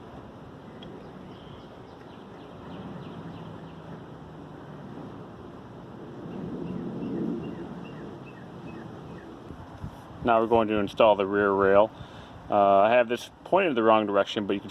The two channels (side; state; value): both; identical; correlation 1.00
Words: Now we're going to install the rear rail. I have this pointed the wrong direction, but you can